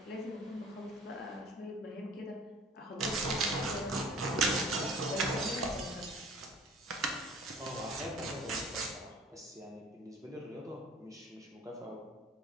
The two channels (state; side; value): normal; both; correlation 0.46